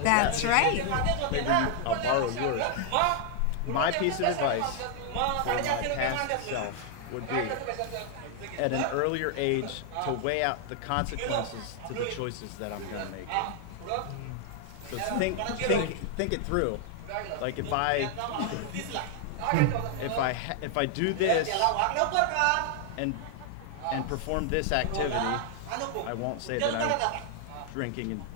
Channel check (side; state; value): both; different; correlation 0.00